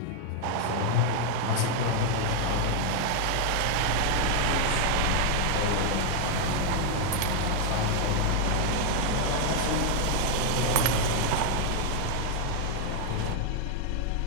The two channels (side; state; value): both; different; correlation 0.00